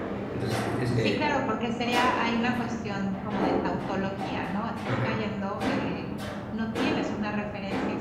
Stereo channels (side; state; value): both; identical; correlation 1.00